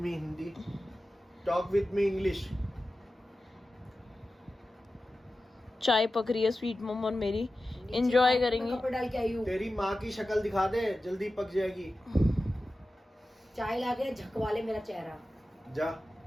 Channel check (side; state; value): both; normal; correlation 0.94